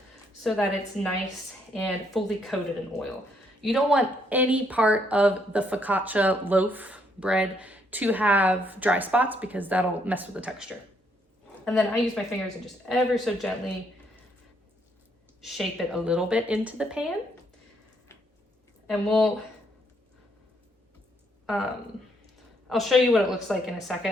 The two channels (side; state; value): both; normal; correlation 0.72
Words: so that it's nice and fully coated in oil. You don't want any part of the focaccia loaf bread to have dry spots because that'll mess with the texture. And then I use my fingers and just ever so gently shape it a little bit into the pan. and I'll show you what it looks like in a